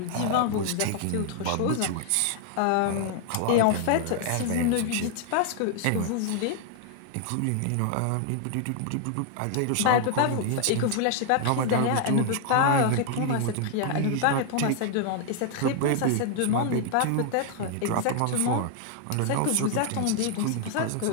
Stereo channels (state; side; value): different; both; correlation 0.00